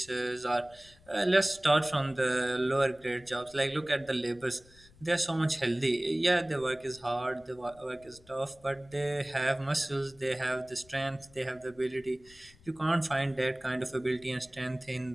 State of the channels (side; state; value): left; noise; rumble, 26 dB below the sound